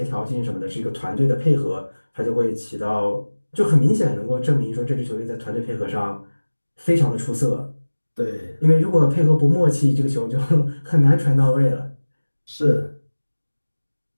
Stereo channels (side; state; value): both; inverted; correlation -1.00